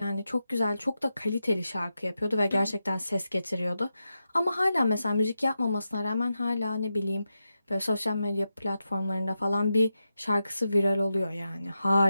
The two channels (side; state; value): both; inverted; correlation -0.89